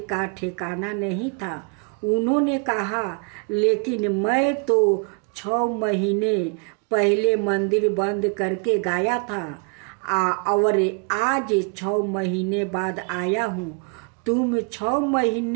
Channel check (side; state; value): left; quieter; 37.7 dB